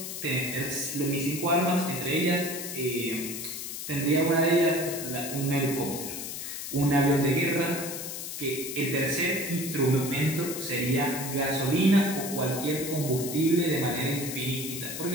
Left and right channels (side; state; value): left; noise; hiss, 7 dB below the sound